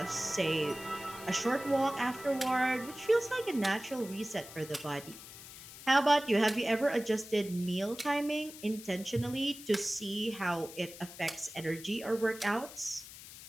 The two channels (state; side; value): noise; left; hiss, 15 dB below the sound